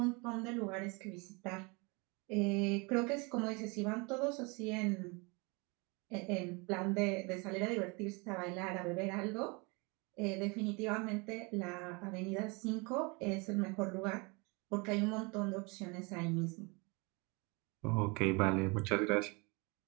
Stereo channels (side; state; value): left; quieter; 28.9 dB